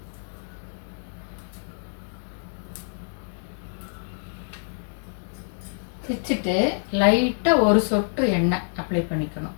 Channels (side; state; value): right; silent; 61 dB below the other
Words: பிச்சுட்டு லைட்டாக ஒரு சொட்டு எண்ணெய் அப்ளை பண்ணிக்கணும்.